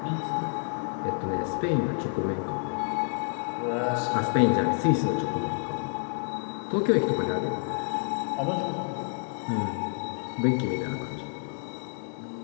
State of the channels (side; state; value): right; silent; 59 dB below the other